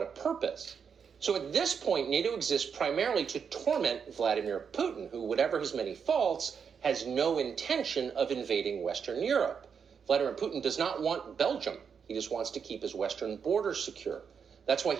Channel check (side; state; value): left; quieter; 6.7 dB